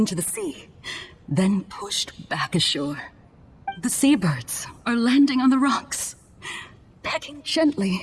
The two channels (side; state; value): both; identical; correlation 1.00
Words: the sea, then pushed back ashore. The seabirds are landing on the rocks, pecking